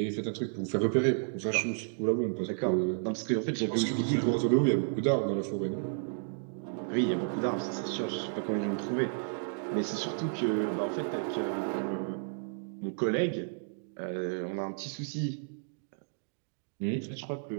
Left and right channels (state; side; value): silent; left; digital silence